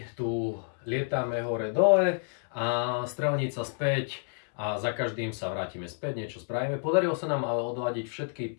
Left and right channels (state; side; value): silent; right; 58 dB below the other